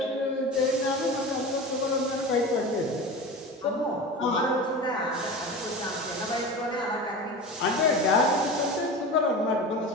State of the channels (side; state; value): both; normal; correlation 0.30